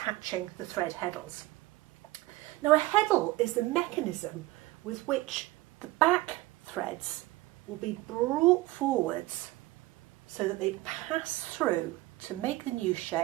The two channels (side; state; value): left; quieter; 19.1 dB